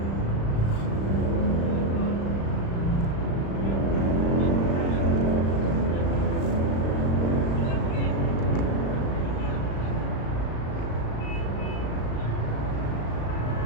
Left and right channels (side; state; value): right; late; 36 ms